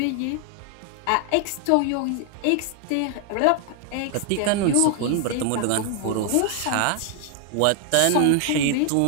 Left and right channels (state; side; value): different; both; correlation 0.00